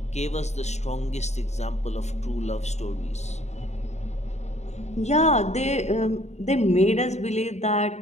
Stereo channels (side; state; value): right; late; 0.32 ms